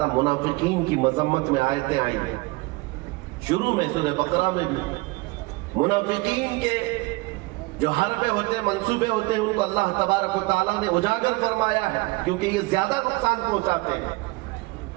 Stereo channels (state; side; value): quieter; left; 23.8 dB